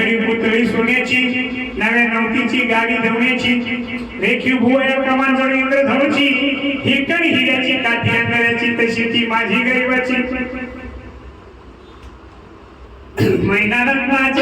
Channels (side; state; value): both; identical; correlation 1.00